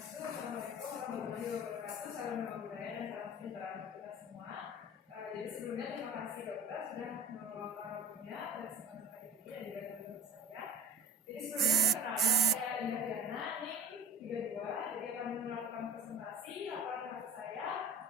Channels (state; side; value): normal; both; correlation 0.38